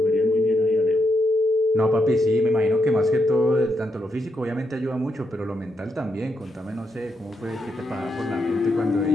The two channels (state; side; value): normal; both; correlation 0.81